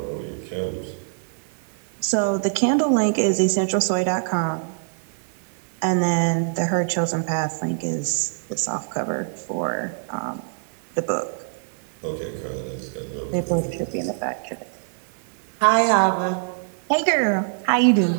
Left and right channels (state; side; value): silent; left; digital silence